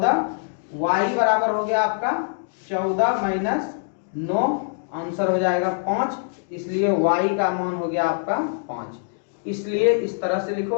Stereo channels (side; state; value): right; silent; digital silence